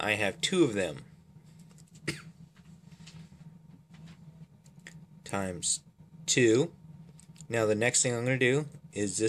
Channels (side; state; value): both; identical; correlation 1.00